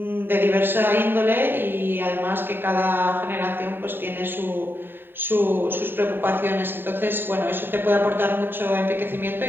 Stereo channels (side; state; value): left; late; 0.098 ms